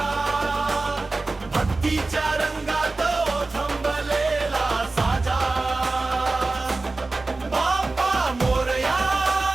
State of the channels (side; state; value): left; quieter; 3.4 dB